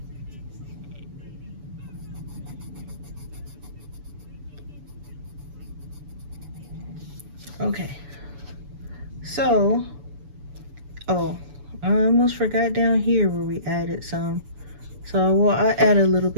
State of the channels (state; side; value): late; left; 7.0 ms